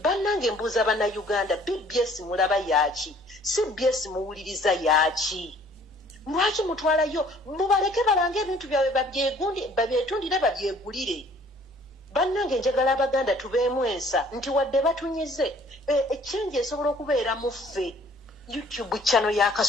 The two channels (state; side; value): normal; both; correlation 0.56